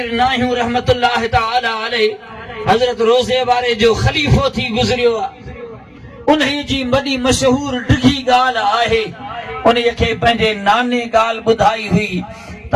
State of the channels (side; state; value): both; identical; correlation 1.00